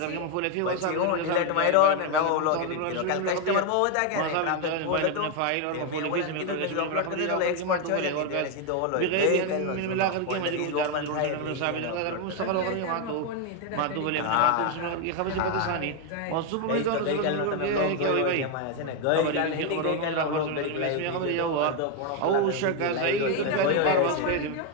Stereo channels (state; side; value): different; both; correlation 0.01